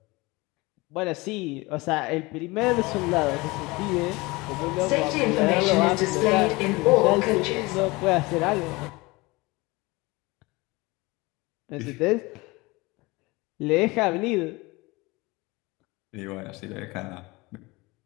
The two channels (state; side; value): quieter; right; 23.2 dB